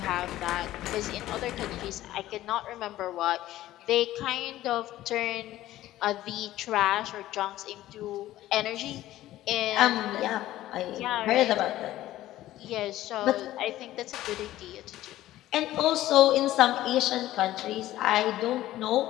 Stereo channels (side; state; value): right; quieter; 14.8 dB